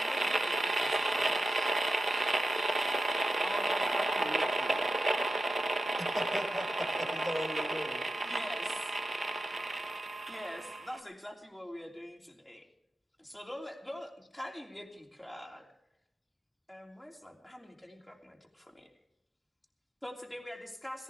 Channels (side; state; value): both; normal; correlation 0.91